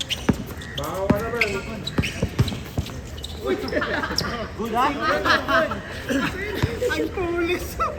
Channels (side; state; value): both; identical; correlation 1.00